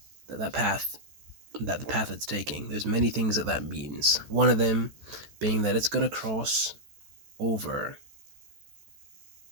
that path that the path it's taking. There's many things that means. One of them being that it's gonna cross over.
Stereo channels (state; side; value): late; left; 14 ms